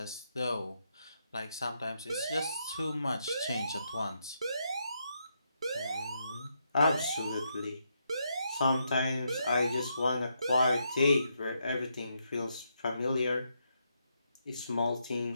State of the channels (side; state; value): both; inverted; correlation -0.79